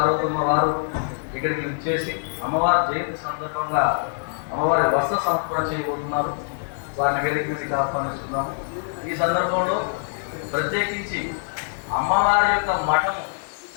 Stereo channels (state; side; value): silent; right; digital silence